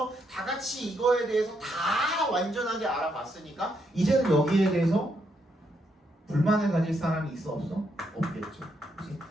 다 같이 이거에 대해서 다 완전하게 알아봤으니까 이제는 여기에 대해서 불만을 가질 사람이 있어 없어? 없겠죠. 그치?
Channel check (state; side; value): normal; both; correlation 0.77